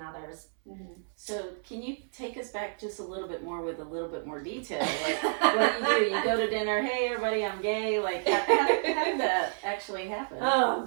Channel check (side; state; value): left; silent; 58 dB below the other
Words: So can you take us back just a little bit more with a little bit more detail? Like, what do? You go to dinner, hey, everybody, I'm gay. Like, how did that actually happen? Oh,